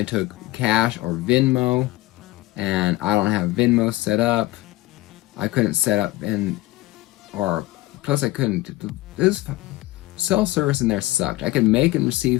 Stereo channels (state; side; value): quieter; right; 18.2 dB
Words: took cash or Venmo, and I don't have Venmo set up. I couldn't set up, plus I couldn't. It was cell service in there sucked. I could make and